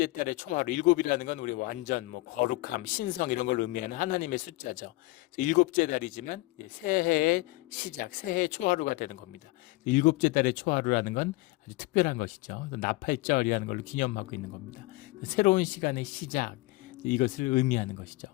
달의 초하루, 일곱이라는 건 우리 완전 거룩함, 신성 이런 걸 의미하는 하나님의 숫자죠. 일곱째 달이지만 새해의 시작, 새해의 초하루가 되는 겁니다. 일곱째 달의 초하루라는 건 아주 특별한 것이죠. 나팔절이라는 걸로 기념하고 있는 겁니다. 새로운 시간의 시작, 이것을 의미하는 것이죠.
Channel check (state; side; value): quieter; right; 21.1 dB